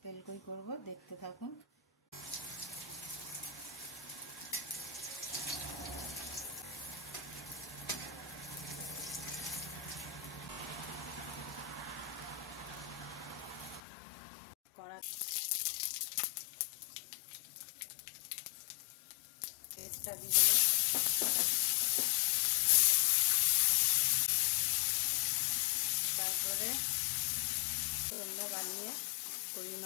তেলকই করব, দেখতে থাকুন। কড়া পেস্টটা দিয়ে দেবো। তারপরে রান্না বানিয়ে কই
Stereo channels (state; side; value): drops out; right; at 13.8 s